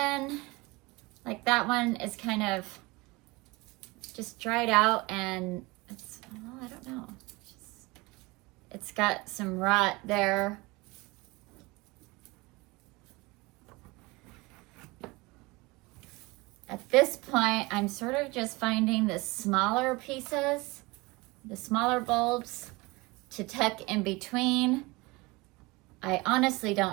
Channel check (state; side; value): quieter; left; 23.8 dB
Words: like that one is kind of just dried out and it's, well, I don't know. It's got some rot there. At this point, I'm sort of just finding the smaller pieces, the smaller bulbs to tuck in between. I honestly